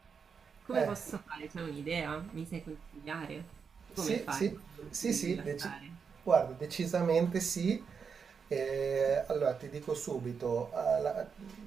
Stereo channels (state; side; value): quieter; left; 6.1 dB